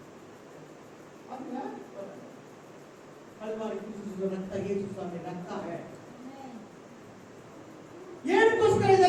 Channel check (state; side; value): identical; both; correlation 1.00